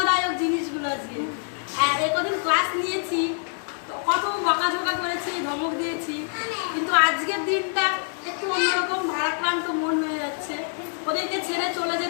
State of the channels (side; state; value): right; silent; 61 dB below the other